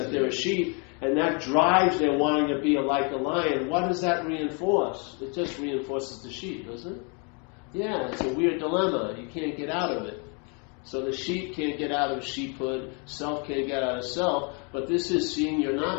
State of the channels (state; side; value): quieter; right; 35.7 dB